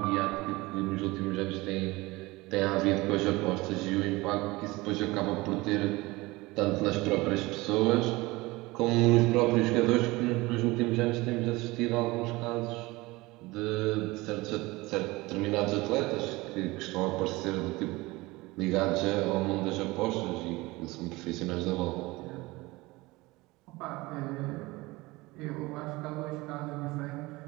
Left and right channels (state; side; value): quieter; left; 21.6 dB